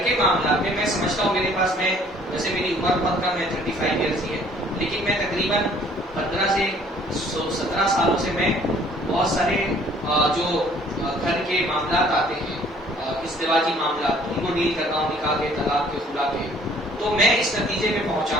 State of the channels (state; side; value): normal; both; correlation 0.57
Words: کے معاملات میں میں سمجھتا ہوں میرے پاس، میں ویسے میری عمر بہت کم ہے، 35 ایئرس ہی ہے، لیکن میں تقریباً 15 سے 17 سالوں سے میں بہت سارے جو گھر کے معاملات آتے ہیں، ازدواجی معاملات، ان کو ڈیل کرتا ہوں، نکاح کے، طلاق کے، خلا کے. تو میں اس نتیجے میں پہنچا